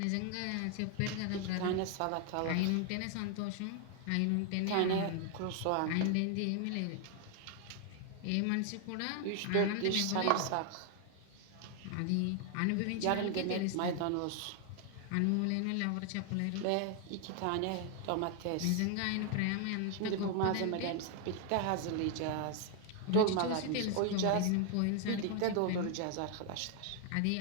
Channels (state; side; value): different; both; correlation 0.00